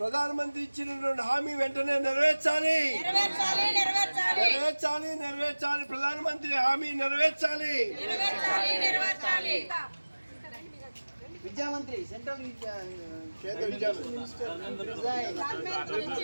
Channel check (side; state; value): both; inverted; correlation -1.00